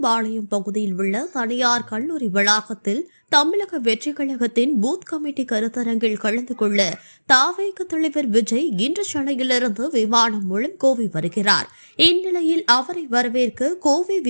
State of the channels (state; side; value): inverted; both; correlation -1.00